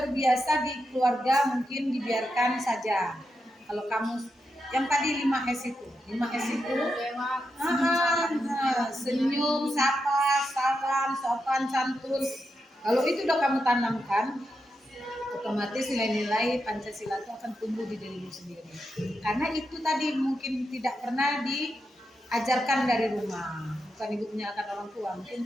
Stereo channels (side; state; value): both; normal; correlation 0.86